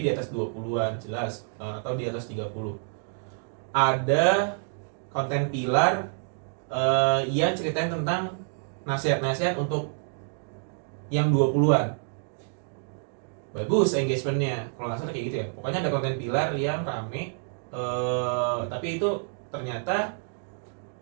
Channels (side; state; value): left; silent; 59 dB below the other